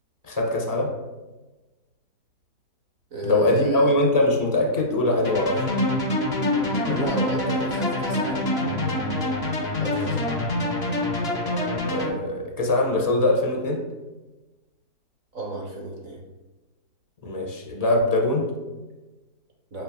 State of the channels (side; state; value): left; late; 2.9 ms